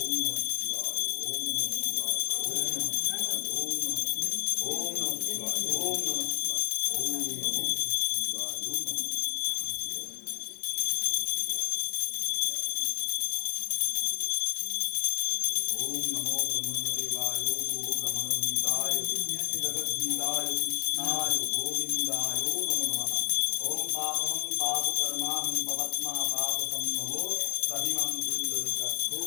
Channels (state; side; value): silent; right; digital silence